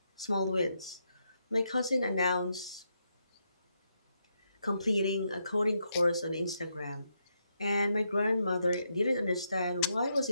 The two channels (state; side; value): inverted; both; correlation -0.80